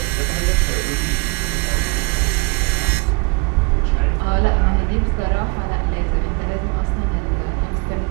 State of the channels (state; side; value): quieter; left; 28.7 dB